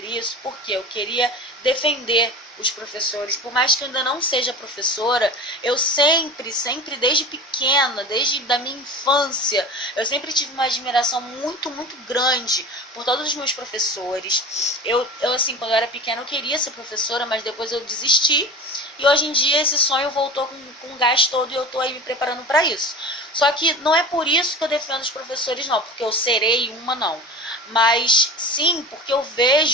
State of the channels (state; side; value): normal; both; correlation 0.33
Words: isso porque eu queria defender os professores. Por mais que eu ainda não seja professora, eu sempre, desde pequena, desde da minha infância, eu sempre tive uma admiração muito, muito grande por todos os meus professores. Eu assim, quando eu era pequena, eu queria ser professora, mas depois eu desisti. E hoje em dia esse sonho voltou com gás todo e eu estou aí me preparando para isso. Só que não é por isso que eu defendo os professores, não, porque eu serei uma, não. Mas sim, porque eu